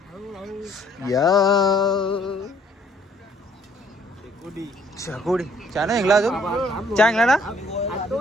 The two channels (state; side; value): normal; both; correlation 0.62